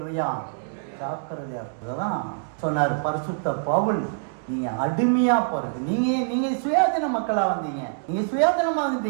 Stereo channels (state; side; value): silent; left; digital silence